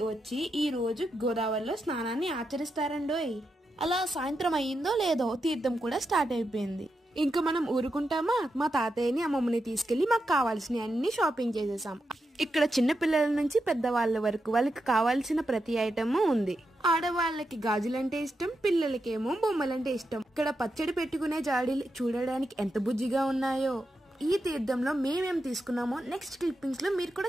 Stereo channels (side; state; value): both; normal; correlation 0.86